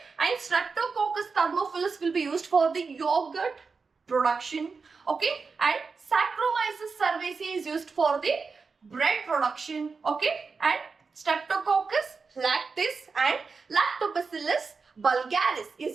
and streptococcus thermophilus will be used for the yogurt production. okay, and Saccharomyces cerevisiae is used for the bread production. okay, and Streptococcus lactis and Lactobacillus bulgaris is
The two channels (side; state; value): left; quieter; 4.8 dB